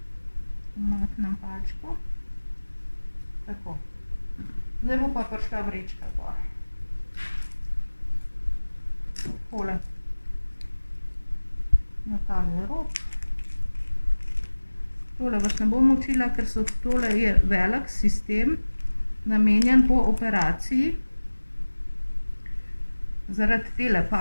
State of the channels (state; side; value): inverted; both; correlation -1.00